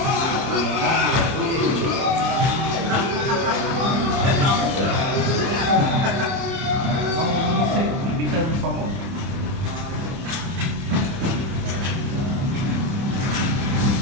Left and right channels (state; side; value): late; left; 30 ms